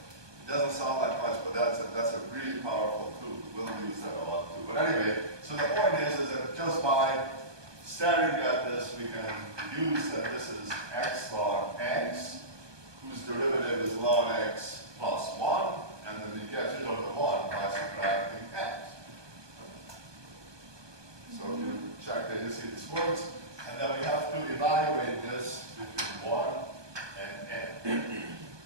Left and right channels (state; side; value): late; left; 1.2 ms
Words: doesn't sound like much, but that's a really powerful tool. We'll use that a lot too. But anyway, so the point is that just by staring at this, we can deduce that this is x log x, whose derivative is log x plus 1, and then we get rid of the 1 by subtracting x. So if you check that, you see this works, and then we have to evaluate this between 1 and n.